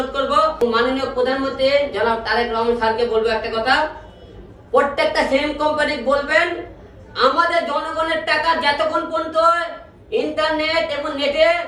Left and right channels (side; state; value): both; identical; correlation 1.00